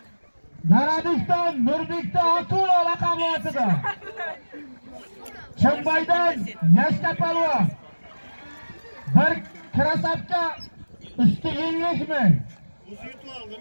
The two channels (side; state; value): both; inverted; correlation -1.00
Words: Garadiston Nurbekda Akula raqamli otida. Chimbaydan Yashka polvon. Bir krasapka üstü 50 ming. O'zi yutib